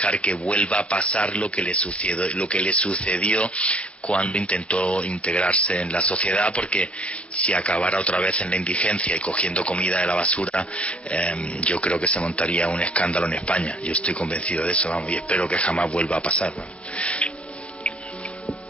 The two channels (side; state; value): right; late; 0.061 ms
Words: que vuelva a pasar lo que le sucedió cuando intentó integrarse en la sociedad, porque si acabara otra vez en la indigencia y cogiendo comida de la basura, yo creo que se montaría un escándalo en España. Yo estoy convencido de eso, vamos, y espero que jamás vuelva a pasar, vamos.